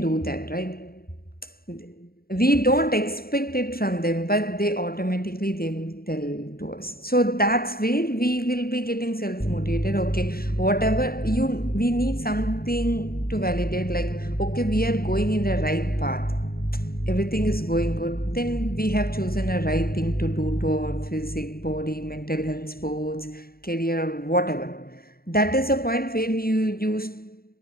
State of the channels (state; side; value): late; right; 0.44 ms